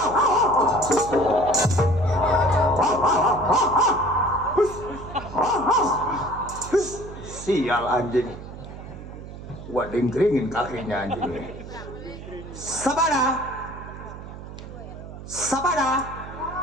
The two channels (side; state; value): right; noise; hum, 13 dB below the sound